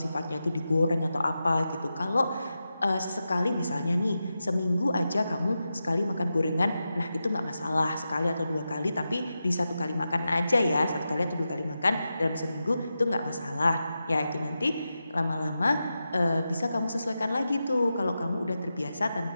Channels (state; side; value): inverted; both; correlation -0.90